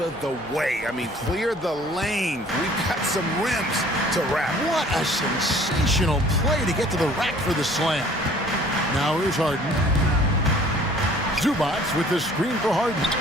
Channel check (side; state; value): both; normal; correlation 0.53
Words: the way. I mean, clear the lane. We've got some rims to wrap. What a sensational play to get to the rack for the slam. Now here's Harden. Zubats with the screen for Harden.